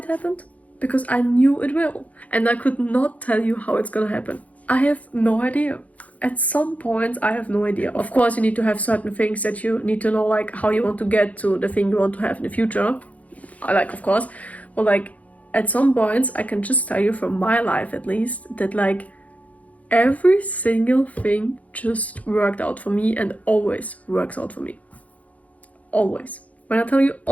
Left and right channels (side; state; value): right; late; 0.069 ms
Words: happened? Because I knew it will, and I could not tell you how it's gonna happen. I have no idea. At some point, I have no idea. Of course, you need to have certain things that you need to know, like how you want to get to the thing you want to have in the future. Of course, but like at some points, I can just tell you from my life at least that like every single thing just worked out for me and always works out for me. Always. When I tell you